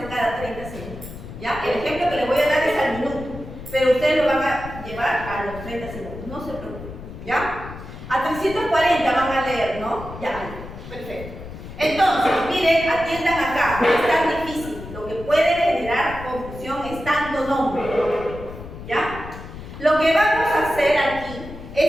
cada 30 segundos. ¿Ya? El ejemplo que les voy a dar es al minuto, pero ustedes lo van a llevar a los 30 segundos, no se preocupen. ¿Ya? A 340 van a leer, ¿no? Ya, perfecto. Entonces, miren, atiendan acá, no es tan difícil. Lo que puede generar confusión es tanto nombre. ¿Ya? Lo que vamos a hacer aquí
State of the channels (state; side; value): noise; left; rumble, 12 dB below the sound